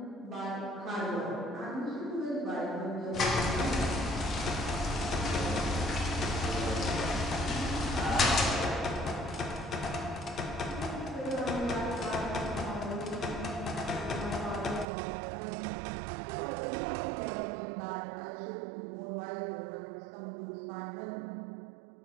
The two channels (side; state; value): left; drops out; at 14.9 s